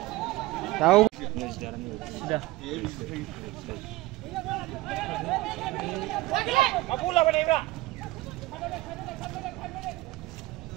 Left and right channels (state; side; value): quieter; left; 19.3 dB